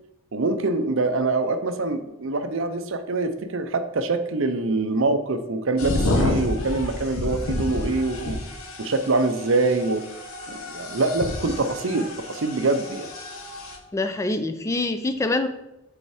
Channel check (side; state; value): both; normal; correlation 0.12